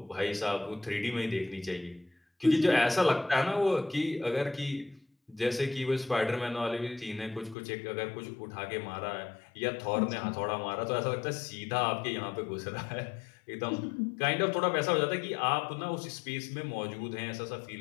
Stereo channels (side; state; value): right; drops out; at 7.6 s